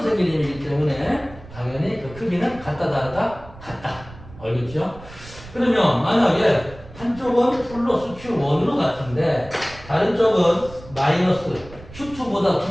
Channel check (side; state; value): right; noise; rumble, 18 dB below the sound